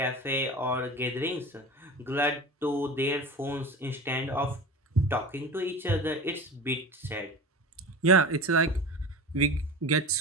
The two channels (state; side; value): normal; both; correlation 0.32